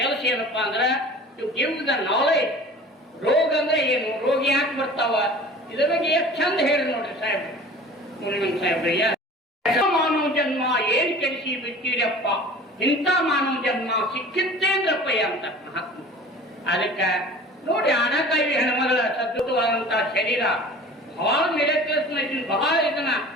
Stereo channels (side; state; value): both; normal; correlation 0.42